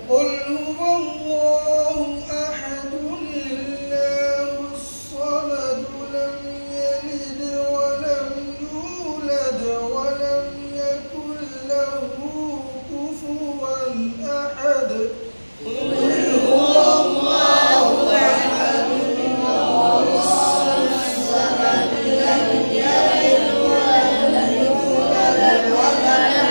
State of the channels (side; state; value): both; inverted; correlation -1.00